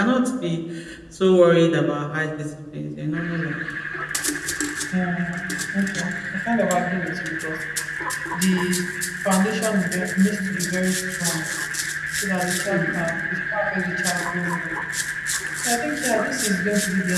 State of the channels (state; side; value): identical; both; correlation 1.00